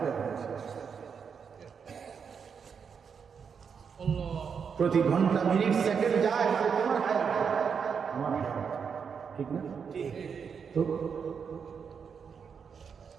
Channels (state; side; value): quieter; left; 6.5 dB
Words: শেষ। প্রতি ঘন্টা, মিনিট, সেকেন্ড যায়, তোমার হায়াত, আমার হায়াত, ঠিক না? তো